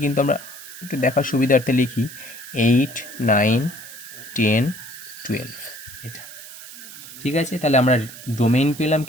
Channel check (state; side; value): noise; right; hiss, 15 dB below the sound